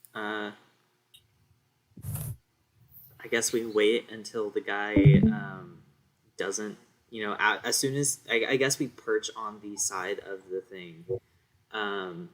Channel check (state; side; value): identical; both; correlation 1.00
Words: I guess we wait until the guy doesn't, as soon as I guess we perch on the side of the thing,